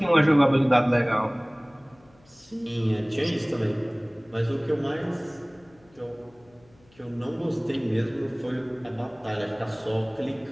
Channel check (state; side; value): noise; left; hum, 30 dB below the sound